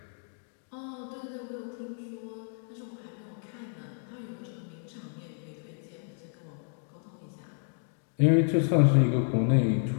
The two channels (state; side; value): silent; right; 57 dB below the other